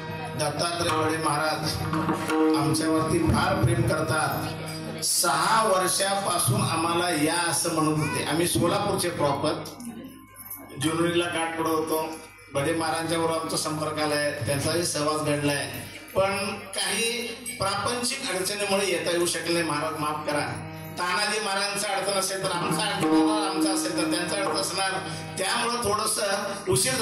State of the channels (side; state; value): both; identical; correlation 1.00